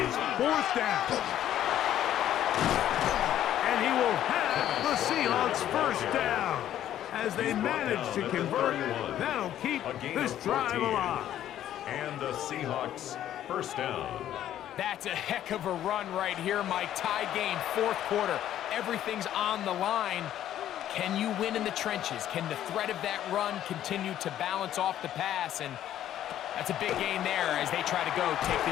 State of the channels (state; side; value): quieter; right; 11.7 dB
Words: 4th down. And he will have the Seahawks first down. As they manage to convert, that'll keep this drive alive. And the Seahawks first down. That's a heck of a run right here, Mike. Tie game, fourth quarter. Everything's on the line. Can you win in the trenches? Can the threat of that run continue to balance off the pass? And that's a big gain there as they try to go take